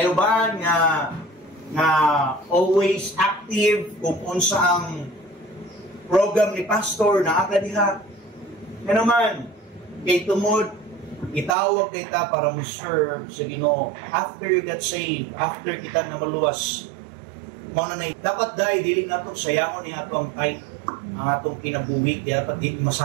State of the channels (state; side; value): drops out; left; at 11.6 s